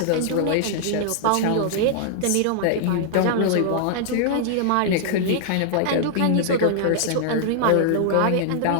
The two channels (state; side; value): different; both; correlation -0.01